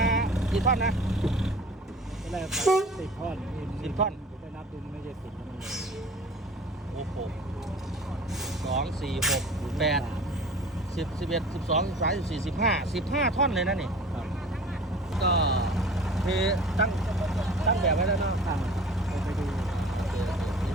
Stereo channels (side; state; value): both; normal; correlation 0.43